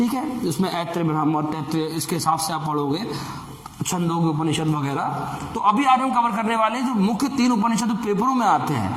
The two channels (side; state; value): both; identical; correlation 1.00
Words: है, जिसमें ऐत्रेय, ब्राह्मण, तैत्रेय, इसके हिसाब से आप पढ़ोगे, छंदोग्य उपनिषद वगैरह। तो अभी आज हम कवर करने वाले हैं जो मुख्य 3 उपनिषद पेपरों में आते